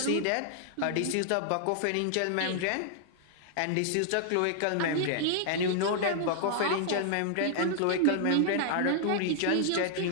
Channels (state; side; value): different; both; correlation -0.01